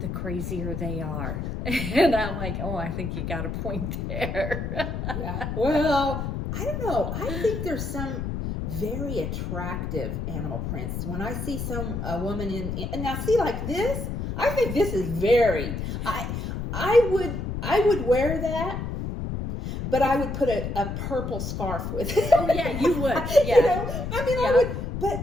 crazier they are. And I'm like, oh, I think you got a point there. Yeah. Well, I don't know. I think there's some very attractive animal prints. When I see a woman and now see like this, I think this is very. I would wear that, but I would put a purple scarf with it. Oh yeah, you would. Yeah. I would.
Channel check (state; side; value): noise; left; rumble, 4 dB below the sound